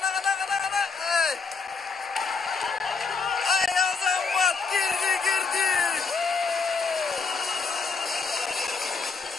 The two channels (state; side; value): quieter; right; 4.8 dB